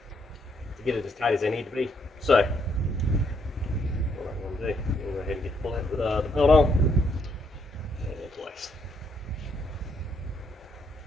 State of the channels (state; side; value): normal; both; correlation 0.73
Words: get it as tight as they need to be. So what I'm going to do, I'm going to go ahead and get the belt on and in place.